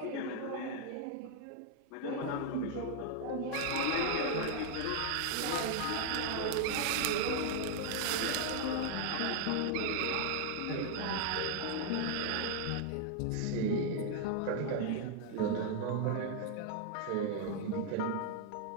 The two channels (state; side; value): different; both; correlation 0.00